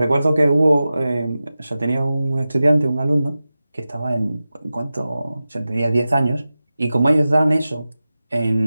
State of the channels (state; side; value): inverted; both; correlation -0.95